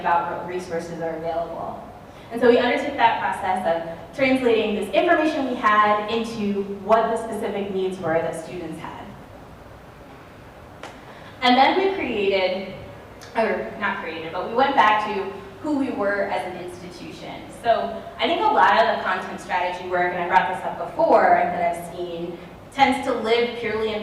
what resources are available. And so we undertook that process of translating this information we had into what the specific needs were that students had. And then we created, or not created, but we went back to who we were as an institution. So I think a lot of the content strategy work, and I brought this up before, that I've seen, tends to live purely in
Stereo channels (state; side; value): identical; both; correlation 1.00